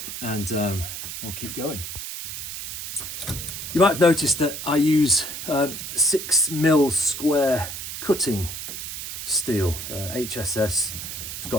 and we'll keep going. You might have noticed that I use 6mm square cutting steel, HSS. It's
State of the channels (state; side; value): noise; right; hiss, 7 dB below the sound